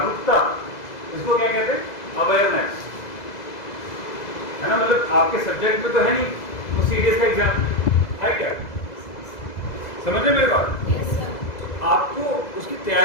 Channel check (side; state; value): right; late; 2.0 ms